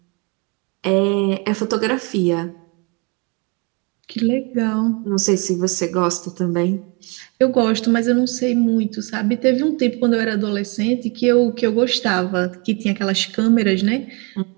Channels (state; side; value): quieter; left; 31.3 dB